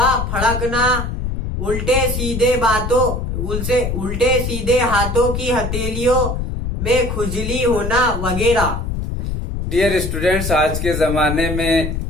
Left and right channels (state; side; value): noise; left; rumble, 3 dB below the sound